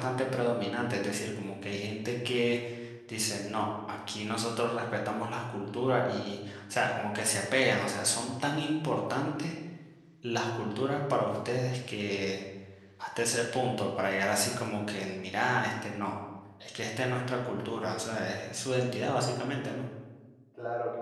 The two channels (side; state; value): both; identical; correlation 1.00